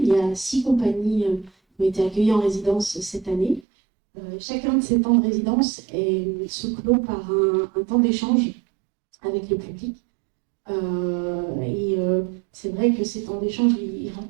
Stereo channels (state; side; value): drops out; left; at 3.7 s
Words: Il y a 6 compagnies qui ont été accueillies en résidence cette année. Chacun de ces temps de résidence se clôt par un temps d'échange avec le public. C'est vrai que ces temps d'échange, ils